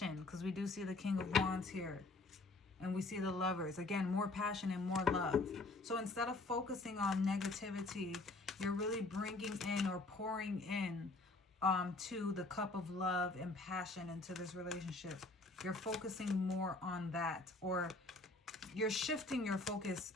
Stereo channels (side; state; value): right; quieter; 3.2 dB